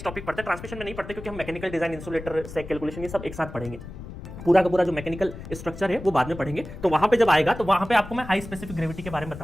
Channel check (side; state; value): left; noise; rumble, 12 dB below the sound